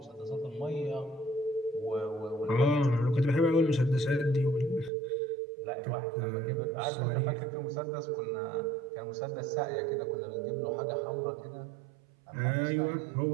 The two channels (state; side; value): drops out; left; at 4.9 s